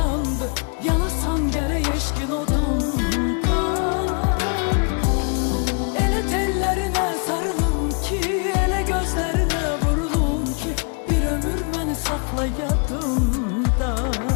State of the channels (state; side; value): quieter; right; 37.1 dB